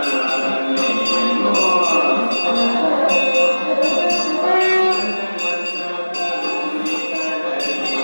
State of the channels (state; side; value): inverted; both; correlation -1.00